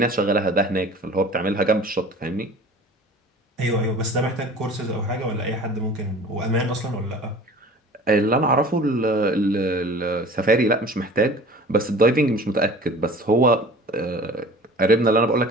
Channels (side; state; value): both; normal; correlation 0.43